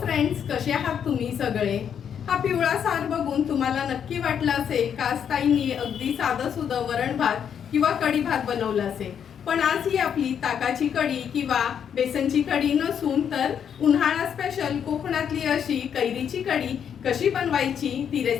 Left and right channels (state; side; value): quieter; right; 8.2 dB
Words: friends, कसे आहात तुम्ही सगळे? हा पिवळा सार बघून तुम्हाला नक्की वाटलं असेल का ताईंनी अगदी साधं सुधं वरण भात किंवा कढी भात बनवला असेल. पण आज ही आपली ताकाची कढी किंवा बेसनची कढी नसून तर उन्हाळा स्पेशल कोकणातली अशी कैरीची कढी कशी बनवायची ती